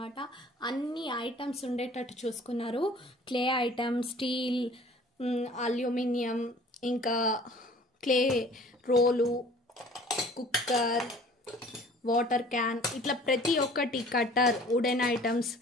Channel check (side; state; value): both; normal; correlation 0.50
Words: అన్ని ఐటమ్స్ ఉండేటట్టు చూసుకున్నారు. క్లే ఐటమ్స్, స్టీల్, అల్యూమినియం, ఇంకా clay role, cooker, water can, ఇట్లా ప్రతి ఒక్కటి, cutter, wooden items,